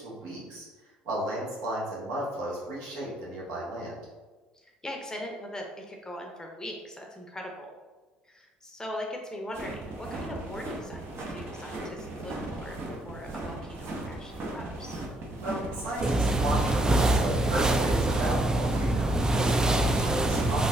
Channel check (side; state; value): both; normal; correlation 0.72